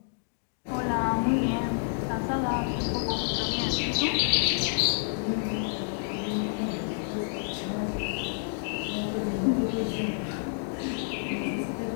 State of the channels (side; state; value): right; silent; digital silence